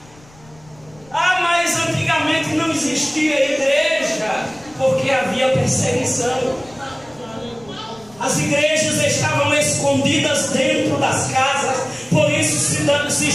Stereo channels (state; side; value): noise; left; rumble, 26 dB below the sound